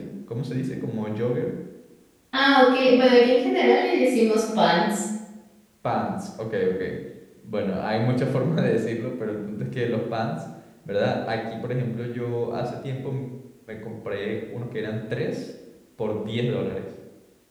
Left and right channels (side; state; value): both; identical; correlation 1.00